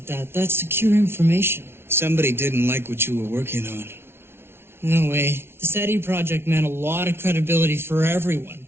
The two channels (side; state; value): left; late; 0.12 ms